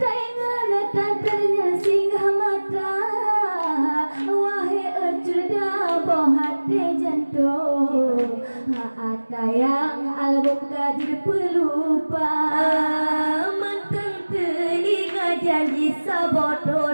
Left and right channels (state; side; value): inverted; both; correlation -1.00